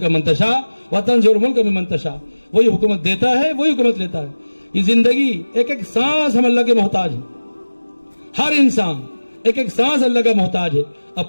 من تشاء وتنزع الملک ممن تشاء, وہی حکومت دیتا ہے, وہی حکومت لیتا ہے. یہ زندگی ایک ایک سانس ہم اللہ کے محتاج ہیں. ہر انسان ایک ایک سانس اللہ کا محتاج ہے.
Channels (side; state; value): both; inverted; correlation -1.00